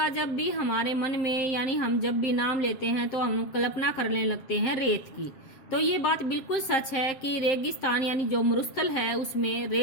जब भी हमारे मन में, यानी हम जब भी नाम लेते हैं तो हम कल्पना करने लगते हैं रेत की। तो ये बात बिल्कुल सच है कि रेगिस्तान यानी जो मरुस्थल है उसमें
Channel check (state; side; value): late; right; 7.6 ms